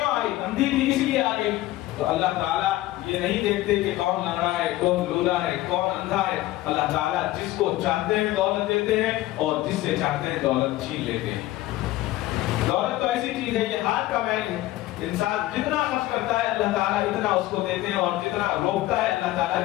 آئی؟ اندھی تھی اس لیے آ گئی۔ تو اللہ تعالیٰ یہ نہیں دیکھتے کہ کون لنگڑا ہے، کون لولا ہے، کون اندھا ہے۔ اللہ تعالیٰ جس کو چاہتے ہیں دولت دیتے ہیں اور جس سے چاہتے ہیں دولت چھین لیتے ہیں۔ دولت تو ایسی چیز ہے، یہ ہاتھ کا میل ہے، انسان جتنا خرچ کرتا ہے اللہ تعالیٰ اتنا اس کو دیتے ہیں، اور جتنا روکتا ہے اللہ تعالیٰ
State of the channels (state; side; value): quieter; right; 16.5 dB